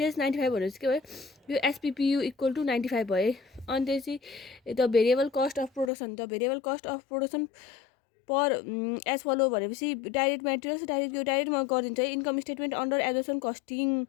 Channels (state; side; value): drops out; right; at 5.9 s